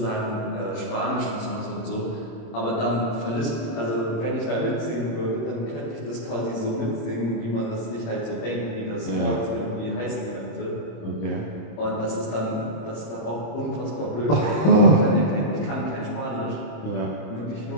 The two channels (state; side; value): late; right; 26 ms